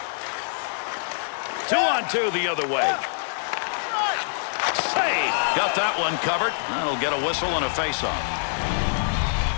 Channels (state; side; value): silent; right; digital silence